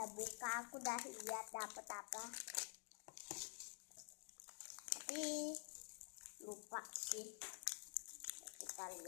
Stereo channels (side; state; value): right; silent; digital silence